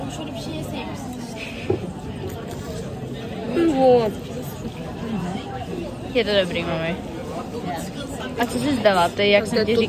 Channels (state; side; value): identical; both; correlation 1.00